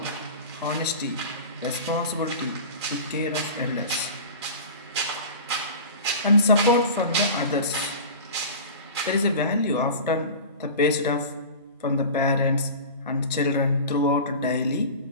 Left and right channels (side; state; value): both; inverted; correlation -0.34